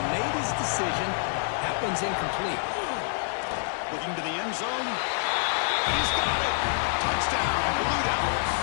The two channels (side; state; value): right; silent; 60 dB below the other